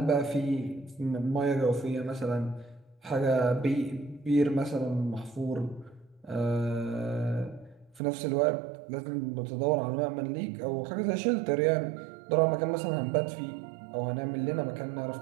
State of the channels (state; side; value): drops out; left; at 8.0 s